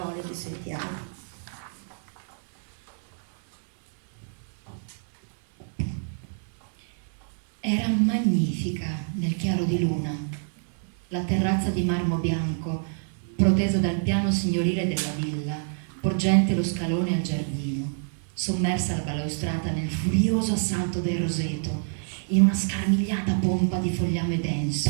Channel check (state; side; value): silent; left; 60 dB below the other